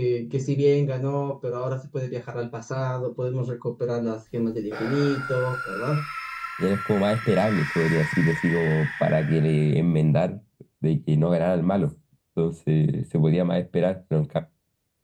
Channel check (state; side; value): identical; both; correlation 1.00